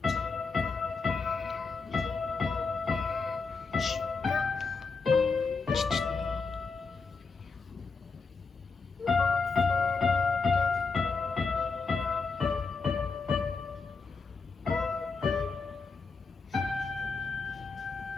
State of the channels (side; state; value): right; quieter; 4.5 dB